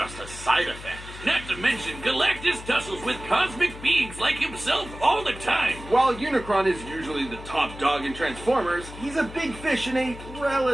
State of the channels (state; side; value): noise; left; hum, 14 dB below the sound